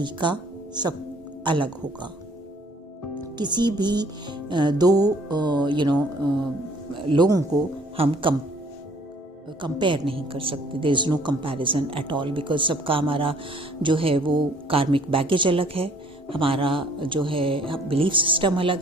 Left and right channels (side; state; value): both; normal; correlation 0.59